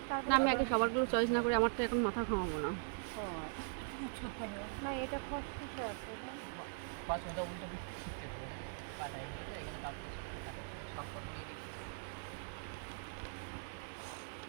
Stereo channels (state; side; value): silent; left; digital silence